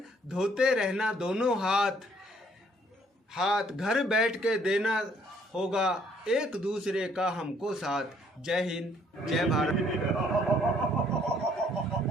धोते रहना दोनों हाथ। हाथ घर बैठ के देना होगा एक दूसरे का हमको साथ। जय हिंद, जय भारत।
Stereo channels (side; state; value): both; normal; correlation 0.64